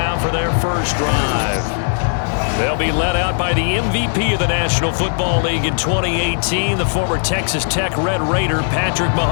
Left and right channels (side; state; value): right; silent; digital silence